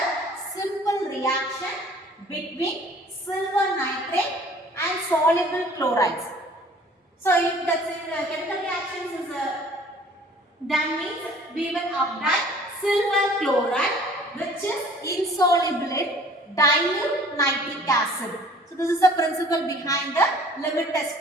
simple reaction between silver nitrate and soluble chlorides. So if the chemical reactions is done means we will apply silver chloride which is insoluble in dilute nitric acid. So this is the principle behind the limit test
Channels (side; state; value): both; normal; correlation 0.52